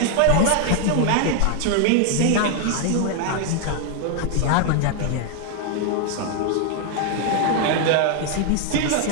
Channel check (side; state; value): both; different; correlation 0.00